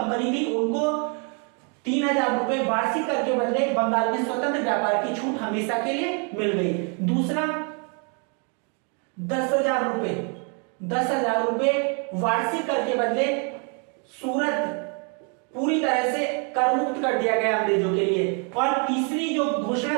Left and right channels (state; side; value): quieter; left; 37.5 dB